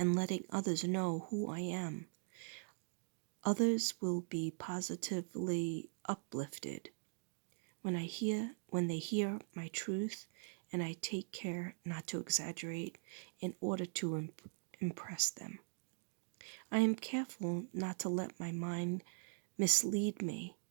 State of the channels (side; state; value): left; silent; digital silence